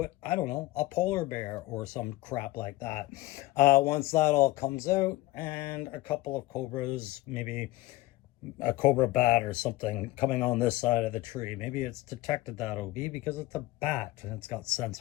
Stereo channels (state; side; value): quieter; right; 18.1 dB